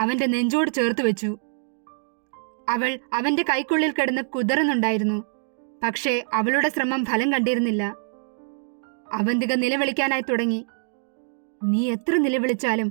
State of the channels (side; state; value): left; silent; digital silence